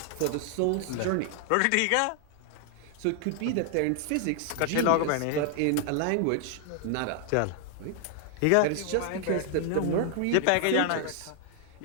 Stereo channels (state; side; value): different; both; correlation 0.00